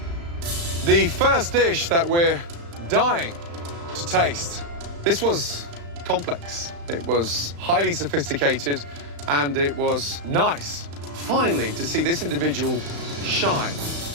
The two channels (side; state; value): left; late; 35 ms